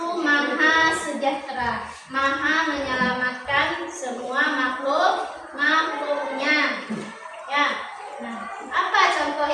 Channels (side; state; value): both; identical; correlation 1.00